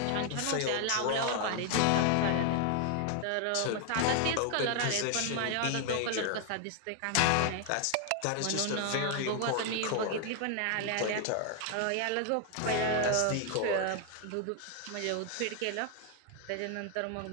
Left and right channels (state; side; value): different; both; correlation 0.00